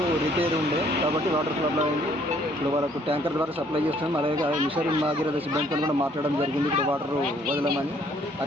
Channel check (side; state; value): both; normal; correlation 0.63